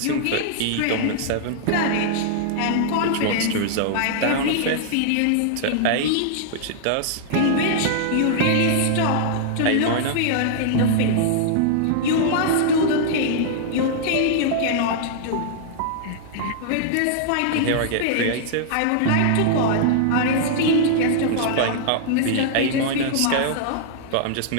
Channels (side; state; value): both; different; correlation -0.01